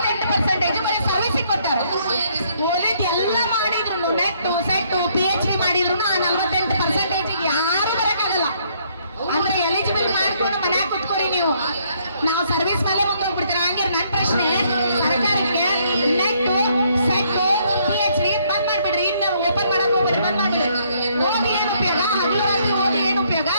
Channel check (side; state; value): both; inverted; correlation -0.68